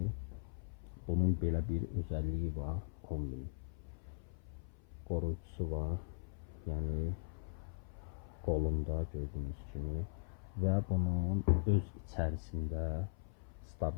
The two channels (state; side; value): silent; right; 51 dB below the other